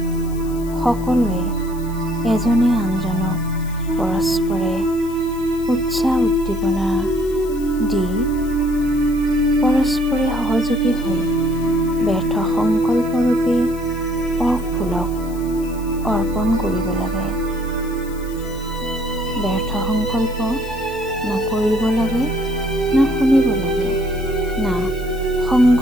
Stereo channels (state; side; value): noise; left; hiss, 20 dB below the sound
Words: সকলোৱে এজনে আনজনক পৰস্পৰে উৎসাহ উদ্দীপনা দি পৰস্পৰে সহযোগী হৈ ব্যৰ্থ সংকল্পৰূপী অফুলক অৰ্পণ কৰিব লাগে। ব্যৰ্থ সংকল্প না কৰিব লাগে, না শুনিব লাগে, না